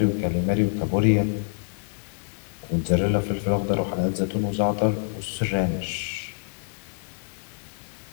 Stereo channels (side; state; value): right; silent; 57 dB below the other